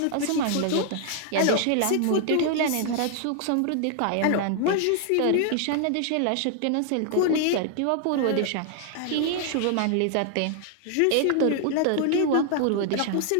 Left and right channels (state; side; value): different; both; correlation 0.00